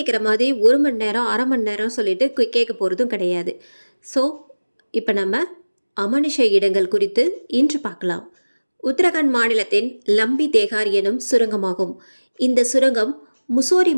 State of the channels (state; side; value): inverted; both; correlation -1.00